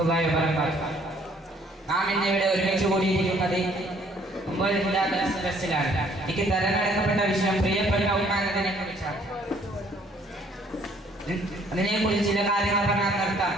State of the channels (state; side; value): normal; both; correlation 0.61